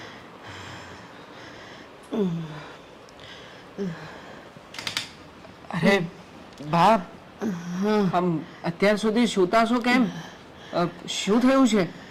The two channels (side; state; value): both; identical; correlation 1.00